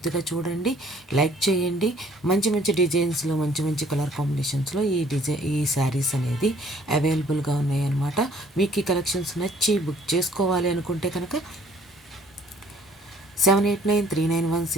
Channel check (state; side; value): normal; both; correlation 0.58